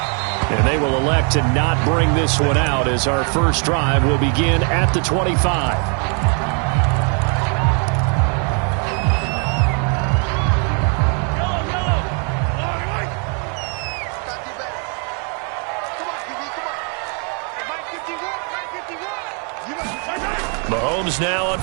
And they will elect to not bring this one out as our first drive will begin at the 25. Mahomes now on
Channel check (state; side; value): quieter; left; 38.8 dB